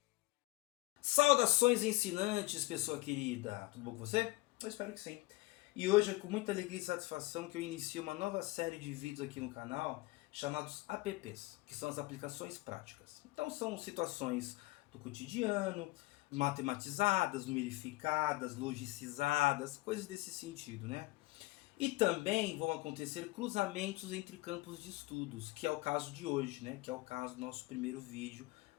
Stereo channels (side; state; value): right; quieter; 21.0 dB